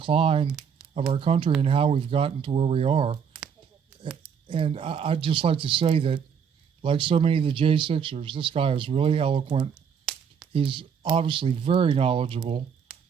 of our country and how we've gotten to where we are. And I'd just like to say that, like so many of the J6ers, this guy is really eloquent. He's obviously very knowledgeable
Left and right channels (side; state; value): left; quieter; 7.1 dB